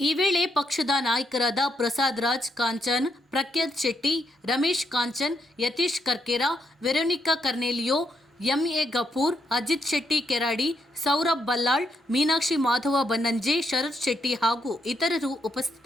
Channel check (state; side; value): normal; both; correlation 0.78